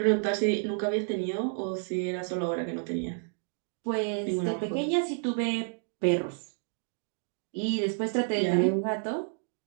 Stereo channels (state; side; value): silent; left; 58 dB below the other